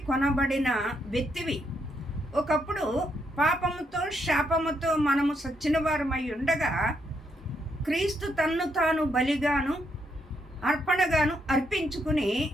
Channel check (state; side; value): normal; both; correlation 0.77